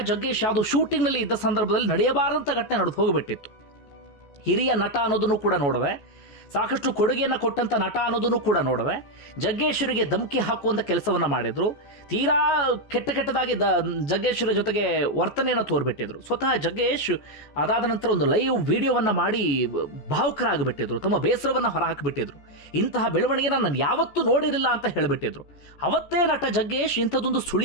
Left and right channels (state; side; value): late; right; 14 ms